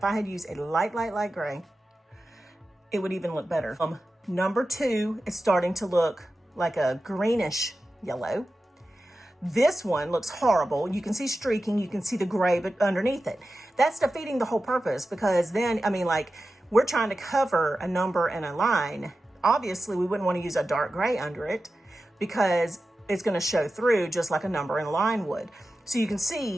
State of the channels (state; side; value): normal; both; correlation 0.93